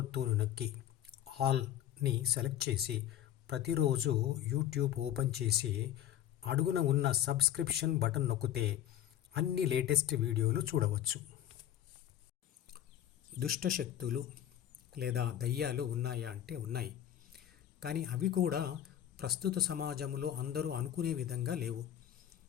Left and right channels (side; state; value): right; quieter; 11.4 dB